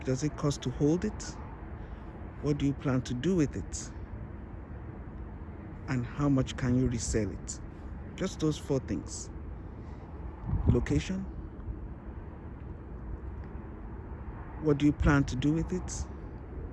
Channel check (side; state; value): both; identical; correlation 1.00